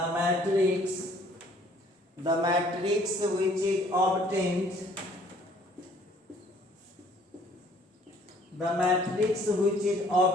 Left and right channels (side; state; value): both; normal; correlation 0.58